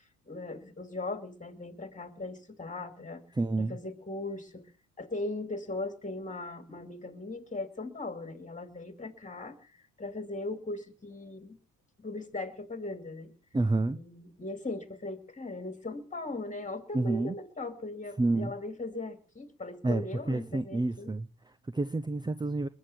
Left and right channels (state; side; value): normal; both; correlation 0.72